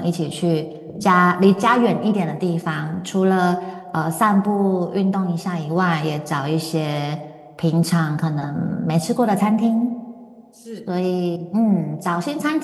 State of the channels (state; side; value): identical; both; correlation 1.00